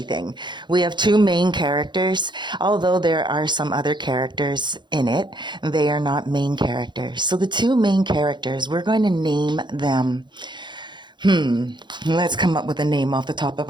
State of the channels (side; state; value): left; late; 0.22 ms